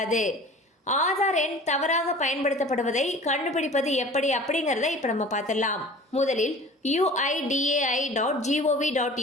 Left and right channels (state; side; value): normal; both; correlation 0.43